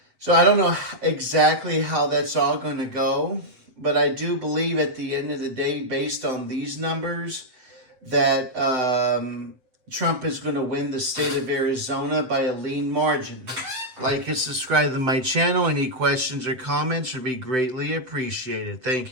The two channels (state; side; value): late; left; 7.8 ms